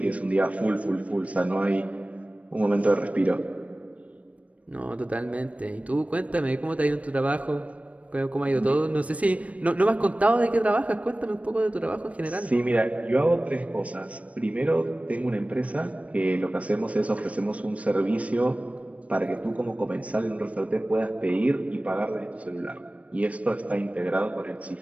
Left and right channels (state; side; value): late; left; 0.066 ms